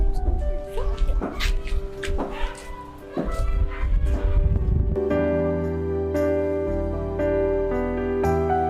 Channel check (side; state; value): both; identical; correlation 1.00